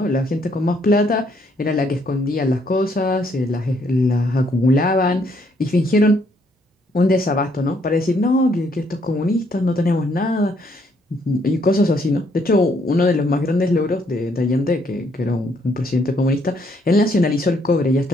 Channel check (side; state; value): both; normal; correlation 0.70